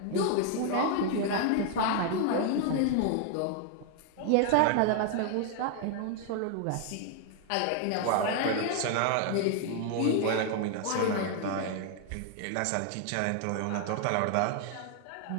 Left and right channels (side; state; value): both; different; correlation 0.00